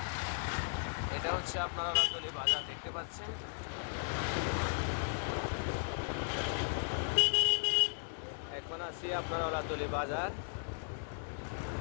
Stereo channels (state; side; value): silent; right; digital silence